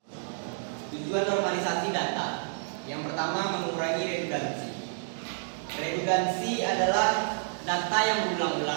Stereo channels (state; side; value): silent; left; digital silence